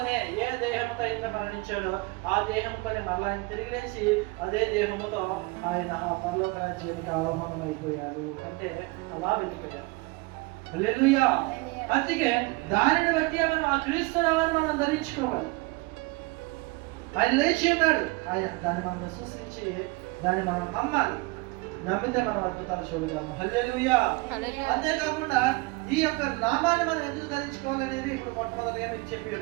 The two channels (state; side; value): quieter; left; 24.8 dB